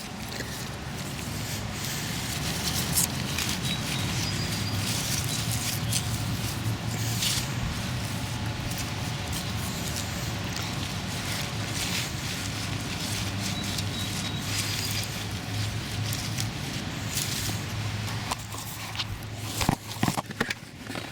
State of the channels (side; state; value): both; identical; correlation 1.00